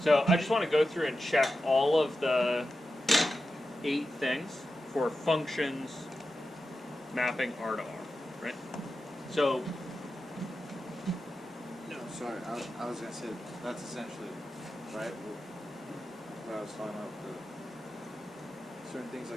I just want to go through and check all of the 8 things for functions mapping R to R, right? So, No, sorry. I was gonna say that's essentially right. What I was talking about the certain things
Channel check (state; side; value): normal; both; correlation 0.91